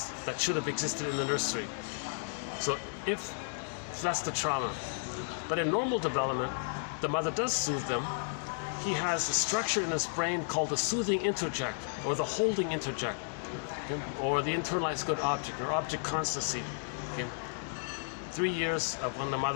that should have existed in the nursery. So if that's the trauma. But in normal development, the mother does soothe them. He has a structure in his brain called the soothing introject, or the holding introject, okay? Or the internalized good object, or object constancy. Okay? 3 years of when the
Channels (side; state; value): right; silent; digital silence